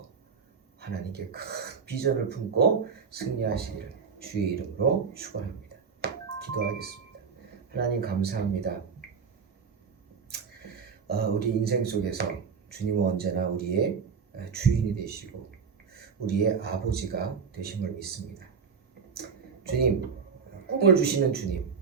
하나님께 큰 비전을 품고 승리하시기를 주의 이름으로 축원합니다. 기도하겠습니다. 하나님 감사합니다. 우리 인생 속에서 주님은 언제나 우리의 주인이 되시고 우리의 아버지가 되심을 믿습니다. 주님, 꿈을 주시는 주님,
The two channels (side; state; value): left; quieter; 5.9 dB